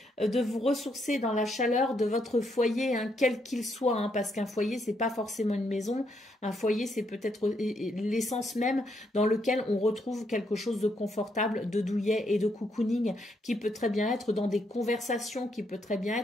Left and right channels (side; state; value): both; normal; correlation 0.76